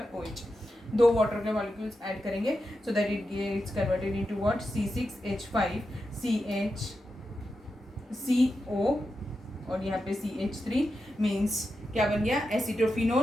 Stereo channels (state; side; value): normal; both; correlation 0.89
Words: OH, 2 वाटर के मॉलिक्यूल्स ऐड करेंगे, so that it gets converted into what, C6H5CH CO और यहाँ पे CH3 मीन्स क्या बन गया,